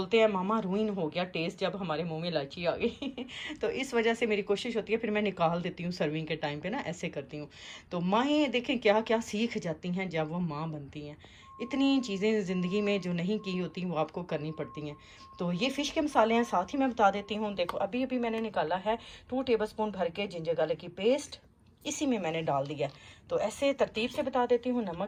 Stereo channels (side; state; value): both; identical; correlation 1.00